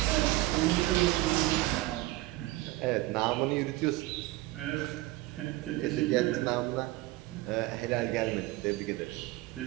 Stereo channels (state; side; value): quieter; left; 18.6 dB